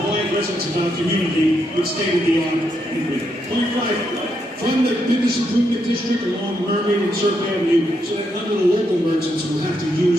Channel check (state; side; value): normal; both; correlation 0.79